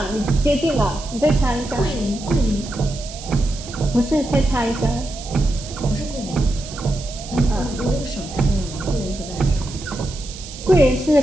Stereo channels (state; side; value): noise; right; hiss, 14 dB below the sound